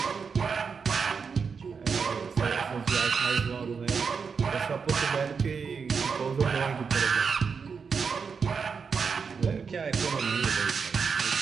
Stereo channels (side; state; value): left; quieter; 5.7 dB